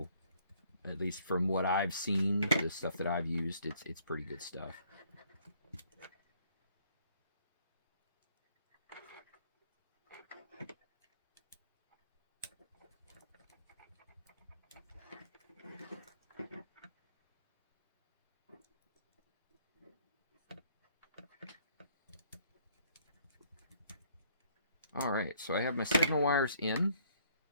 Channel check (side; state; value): both; inverted; correlation -0.63